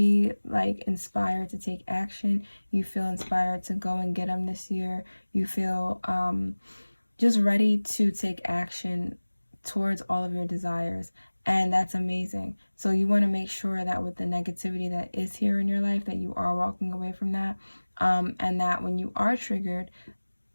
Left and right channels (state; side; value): inverted; both; correlation -1.00